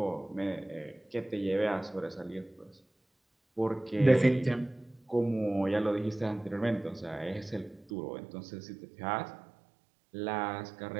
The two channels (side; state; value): left; drops out; at 7.9 s